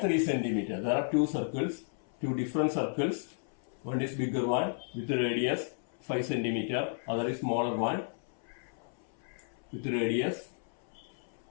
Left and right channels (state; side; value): silent; right; 56 dB below the other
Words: cm. There are two circles, two different circles. One is bigger one with radius 5 cm, other is smaller one with radius